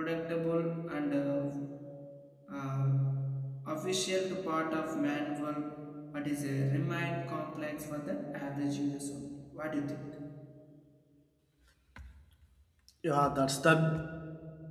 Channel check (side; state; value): both; identical; correlation 1.00